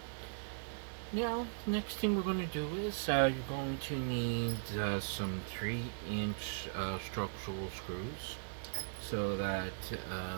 Now, next thing we're going to do is you're going to need some 3-inch structural screws so that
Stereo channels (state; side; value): silent; left; digital silence